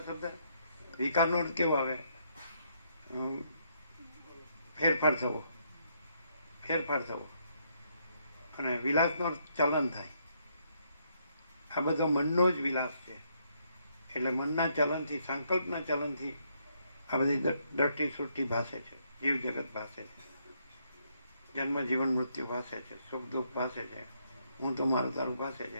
શબ્દ, વિકારનો અર્થ કેવો આવે? ફેરફાર થવો, અને વિલાસનો અર્થ ચલન થાય. આ બધો મનનો જ વિલાસ છે. એટલે મનના ચલનથી, સંકલ્પના ચલનથી આ બધી દ્રષ્ટિ સૃષ્ટિ ભાષે છે, જીવ જગત ભાષે છે, જન્મ જીવન મૃત્યુ ભાષે છે, સુખ દુઃખ ભાષે છે, હું તો મારું તારું ભાષે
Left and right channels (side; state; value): both; inverted; correlation -0.73